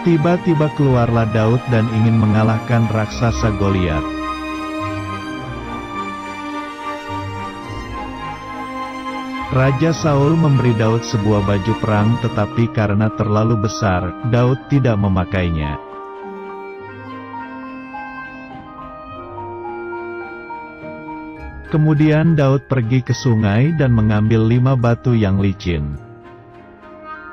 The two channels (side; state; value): both; identical; correlation 1.00